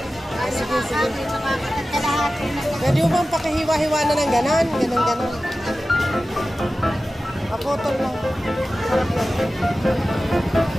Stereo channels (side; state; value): both; normal; correlation 0.95